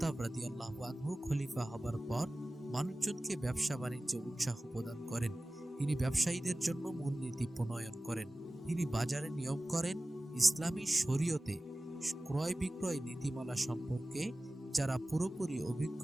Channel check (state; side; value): normal; both; correlation 0.97